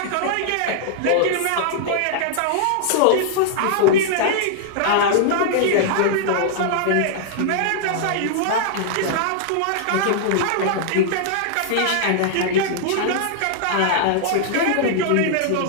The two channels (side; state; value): both; different; correlation -0.01